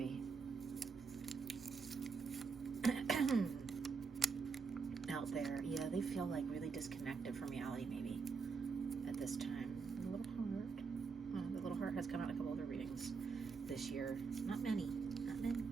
Out there. Yeah, they feel like really disconnected from reality maybe at this time. The little heart. The little heart has come out in a couple other readings this year. Not many.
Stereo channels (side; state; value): left; quieter; 5.1 dB